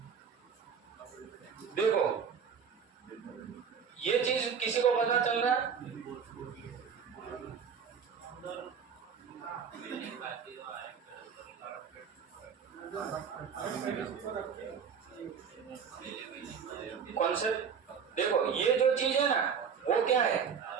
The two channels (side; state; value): left; quieter; 6.8 dB